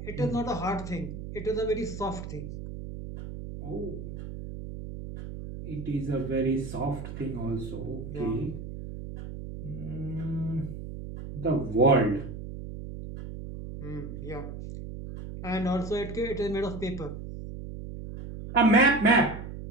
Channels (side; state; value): right; noise; hum, 9 dB below the sound